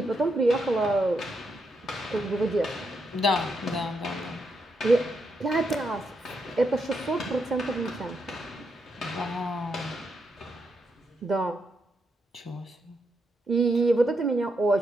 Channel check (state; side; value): normal; both; correlation 0.81